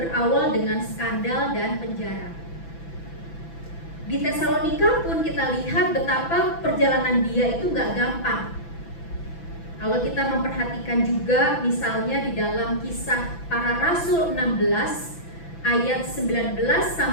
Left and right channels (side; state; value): right; late; 6.0 ms